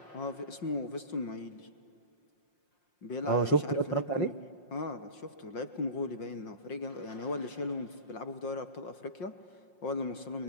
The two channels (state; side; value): late; right; 5.6 ms